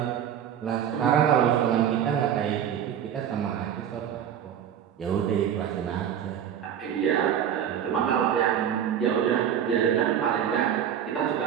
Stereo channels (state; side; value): quieter; left; 9.3 dB